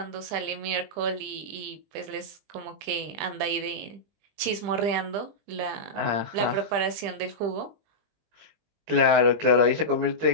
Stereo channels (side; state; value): left; late; 20 ms